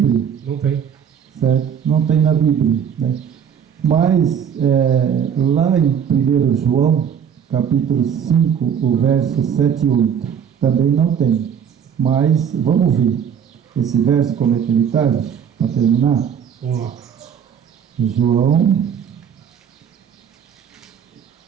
Não tem. Certo? Não tem na Bíblia, né? Mas, lá em 1 João, capítulo 5, o verso 7 e 8, também não tem. Mas, vamos ver. esse verso como é que ele está? Para terminar. Vamos lá.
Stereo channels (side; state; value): left; quieter; 8.0 dB